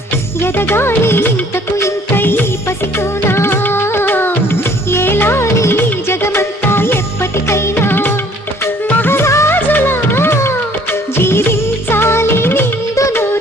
ఎదగాలి ఇంతకు ఇంత ఈ పసికోనా, ఏలాలి జగమంతా ఎప్పటికైనా, మహారాజులా జీవించాలి నిండు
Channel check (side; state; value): both; normal; correlation 0.57